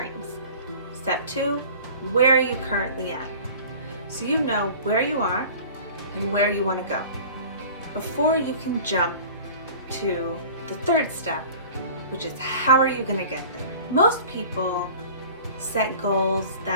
Step 2, where are you currently at? So you know where you are and where you want to go before you can jump to the third step, which is how are you going to get there? Most people set goals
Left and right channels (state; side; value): inverted; both; correlation -0.43